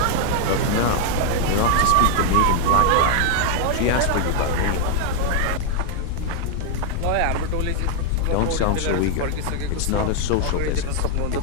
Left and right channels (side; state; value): both; different; correlation 0.00